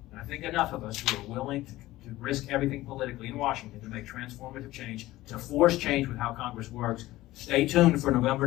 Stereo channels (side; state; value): right; quieter; 16.9 dB